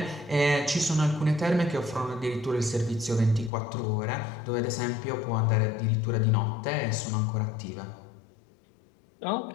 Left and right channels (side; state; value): right; drops out; at 3.5 s